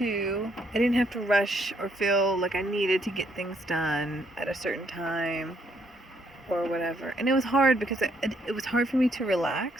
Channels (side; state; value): both; normal; correlation 0.71